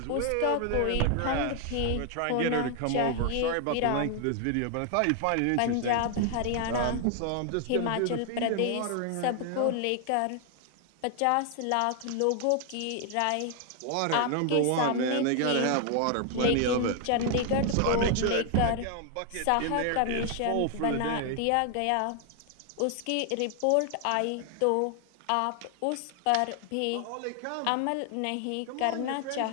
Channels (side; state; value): both; different; correlation 0.00